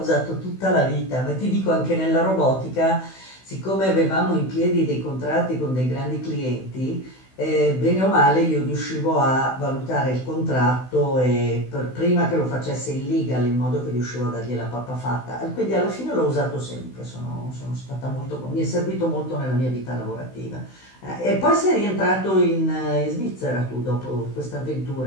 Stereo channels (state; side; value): late; right; 16 ms